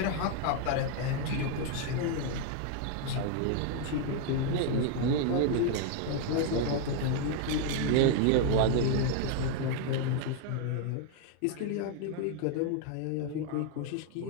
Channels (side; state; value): both; different; correlation 0.00